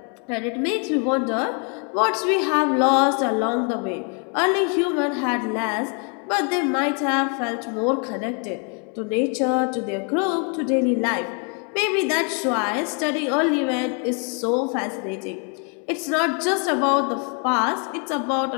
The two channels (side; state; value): right; quieter; 38.2 dB